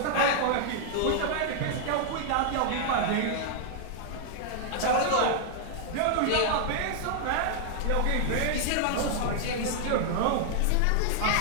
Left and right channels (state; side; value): different; both; correlation 0.00